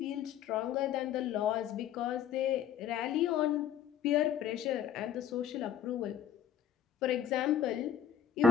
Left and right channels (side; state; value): right; quieter; 9.1 dB